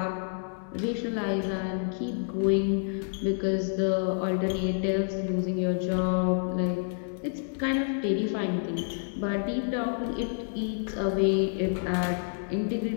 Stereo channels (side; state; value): right; silent; digital silence